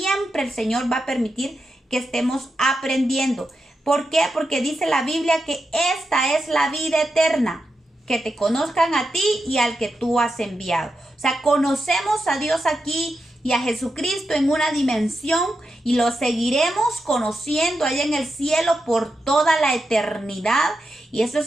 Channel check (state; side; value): normal; both; correlation 0.88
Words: el Señor va a permitir que estemos aprendiendo. ¿Por qué? Porque dice la Biblia que esta es la vida eterna, que te conozcan a ti y al que tú has enviado. O sea, conocemos a Dios aquí y a Jesucristo en una dimensión, y lo seguiremos conociendo allá en el cielo por toda la eternidad. Y eso